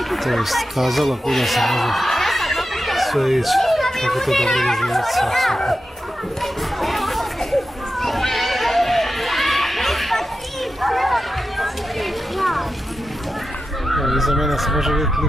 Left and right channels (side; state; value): both; normal; correlation 0.91